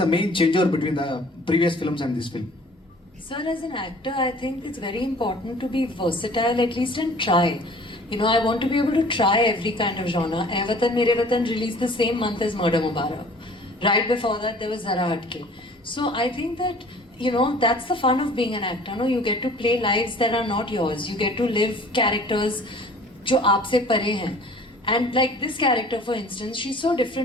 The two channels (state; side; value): normal; both; correlation 0.49